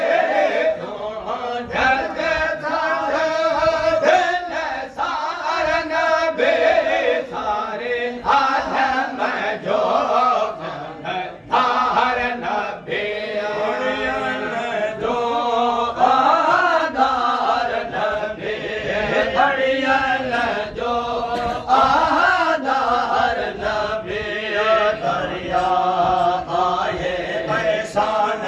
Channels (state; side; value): identical; both; correlation 1.00